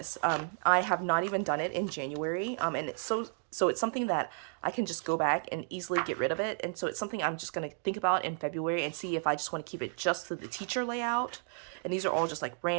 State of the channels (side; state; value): left; silent; 56 dB below the other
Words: I have not even done it in January. And it's so it's something that I can just go back and easily get rid of it. And so it's something I'm just going to think about in February and see if I just want to keep it just to the teacher layout. And these are all just like